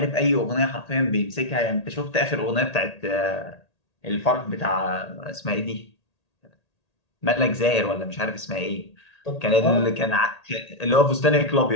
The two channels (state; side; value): late; right; 1.8 ms